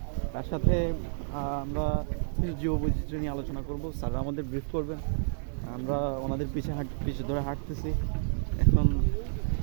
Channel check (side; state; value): left; silent; digital silence